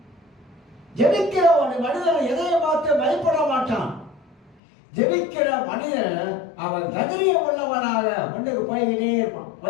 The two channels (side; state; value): right; drops out; at 4.5 s